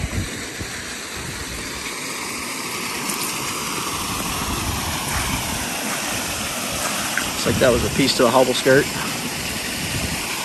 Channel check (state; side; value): identical; both; correlation 1.00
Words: Looks like that was a piece to a hobble skirt.